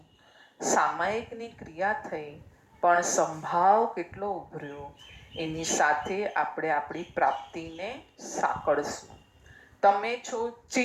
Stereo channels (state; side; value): identical; both; correlation 1.00